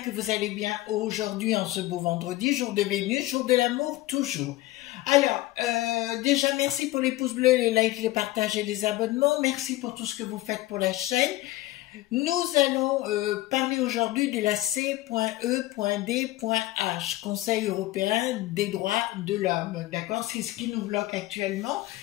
que vous allez bien aujourd'hui en ce beau vendredi, jour de Vénus, jour de l'amour toujours. Alors, déjà merci pour les pouces bleus, les likes, les partages et les abonnements. Merci pour tout ce que vous faites pour la chaîne. Nous allons parler aujourd'hui de la C.E.D.H, Conseil européen des droits de l'homme, d'accord? C'est ce qui nous bloque actuellement.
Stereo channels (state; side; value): quieter; right; 17.2 dB